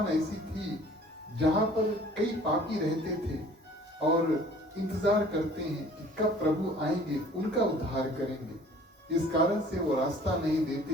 ऐसी थी जहां पर कई पापी रहते थे और इंतजार करते हैं कि कब प्रभु आएंगे, उनका उद्धार करेंगे। इस कारण से वो रास्ता नहीं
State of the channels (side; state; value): both; normal; correlation 0.51